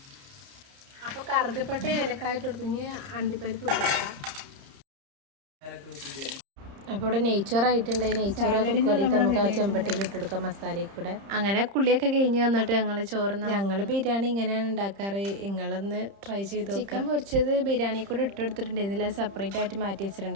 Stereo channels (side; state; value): left; late; 30 ms